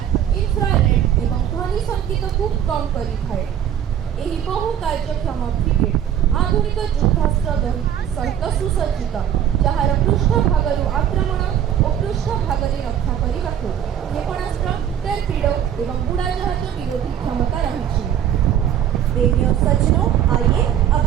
इन्फ्रारेड एवं ध्वनि संकेत को कम करिଥାଏ। ଏହି ବହୁ କାର୍ଯ୍ୟକ୍ଷମ ଫ୍ରିଗେଟ୍ ଆଧୁନିକ ଯୁଦ୍ଧାସ୍ତ୍ର ସହିତ ସୁସଜ୍ଜିତ, ଯାହାର ପୃଷ୍ଠଭାଗରୁ ଆକ୍ରମଣ ଓ ପୃଷ୍ଠଭାଗରେ ରକ୍ଷା କରିବାକୁ କ୍ଷେପଣାସ୍ତ୍ର, ଟର୍ପିଡୋ ଏବଂ ବୁଡ଼ାଜାହାଜ ବିରୋଧୀ କ୍ଷମତା ରହିଛି। देवी और सज्जनों, आइए अब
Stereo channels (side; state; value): left; quieter; 9.9 dB